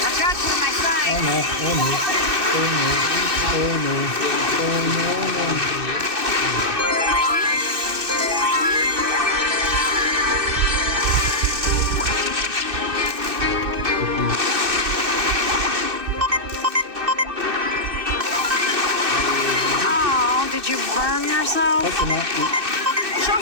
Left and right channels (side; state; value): left; late; 2.6 ms